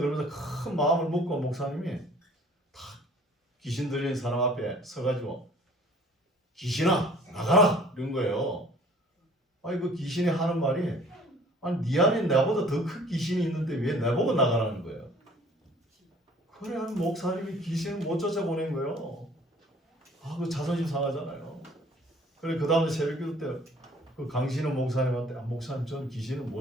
큰 마음을 먹고 목사님이 딱 귀신 들린 사람 앞에 서가지고 귀신아 나가라 이런 거예요. 그 귀신이 하는 말이 네 안에 나보다 더 큰 귀신이 있는데 왜 나보고 나가라는 거예요. 그래 한 목사님이 귀신을 못 쫓아보낸 거예요. 그 자존심 상하잖아요. 그래 그 다음에 새벽기도 때 그 강신호 목사님한테 목사님 전 귀신을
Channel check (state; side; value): normal; both; correlation 0.53